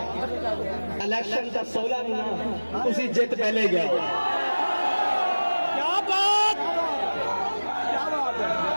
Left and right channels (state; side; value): inverted; both; correlation -1.00